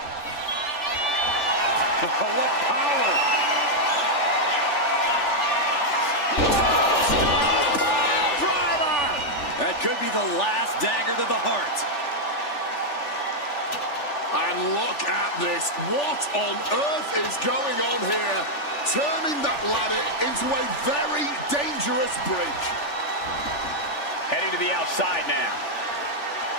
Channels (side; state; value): right; late; 3.4 ms